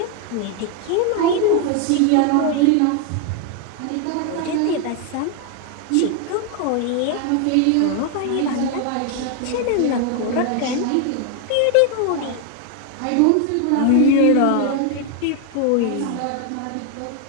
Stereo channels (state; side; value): different; both; correlation 0.01